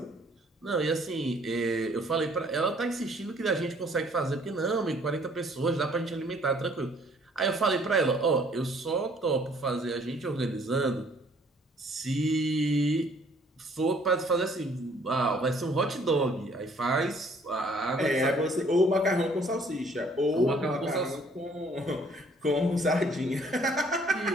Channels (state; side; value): normal; both; correlation 0.60